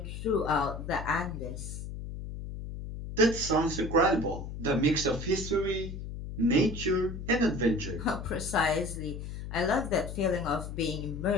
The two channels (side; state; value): left; noise; hum, 8 dB below the sound